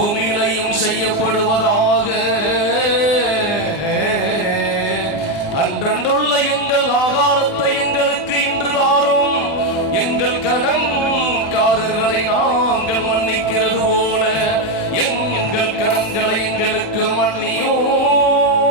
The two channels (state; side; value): late; right; 19 ms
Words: செய்யப்படுவதாக. அன்றன்றுள்ள எங்கள் ஆகாரத்தை எங்களுக்கு இன்று தாரும். எங்கள் கடன்காரர்களை நாங்கள் மன்னிக்கிறது போல எங்கள் கடன்களை எங்களுக்கு மன்னியும்.